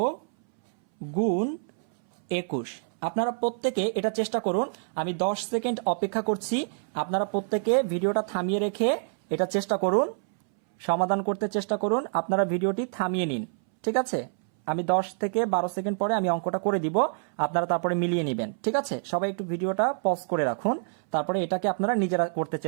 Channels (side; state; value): left; silent; 60 dB below the other